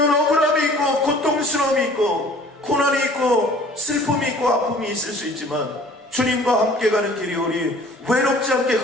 억울함이 있고 고통스러움이 있고 고난이 있고 슬픔이 있고 아픔이 있을 수 있지만 주님과 함께 가는 길이 우리 외롭지 않게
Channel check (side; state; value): both; normal; correlation 0.50